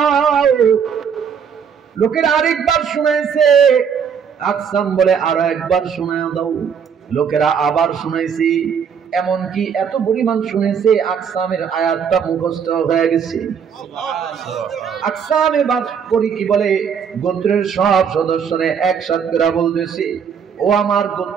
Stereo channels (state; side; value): quieter; left; 7.1 dB